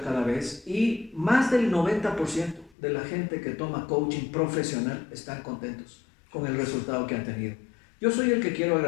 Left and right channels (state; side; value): drops out; right; at 2.7 s